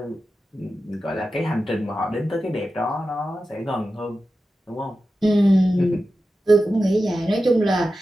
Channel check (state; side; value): normal; both; correlation 0.92